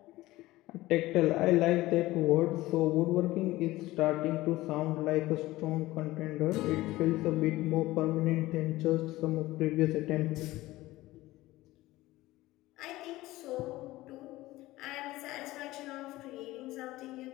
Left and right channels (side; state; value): right; quieter; 17.8 dB